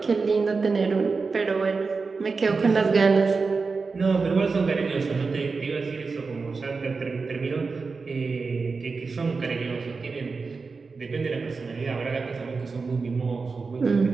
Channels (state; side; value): quieter; left; 4.5 dB